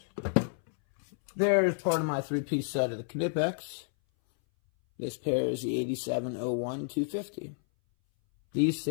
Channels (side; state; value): right; silent; 58 dB below the other